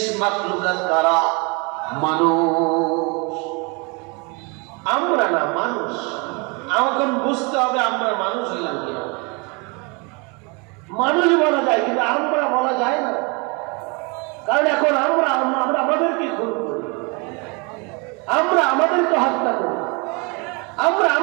মাখলুকাত কারা? মানুষ। আমরা না, মানুষ। আমাকে বুঝতে হবে আমরা মানুষ হইলাম কিনা। মানুষ বলা যায় কিন্তু আমরা বলা যায় না, কারণ এখন আমরা আমাদেরকে খুন করি, আমরা আমাদেরকে হত্যা করি, আমরা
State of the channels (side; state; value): left; quieter; 30.9 dB